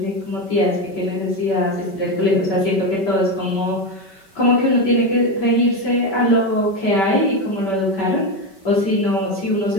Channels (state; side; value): late; right; 5.2 ms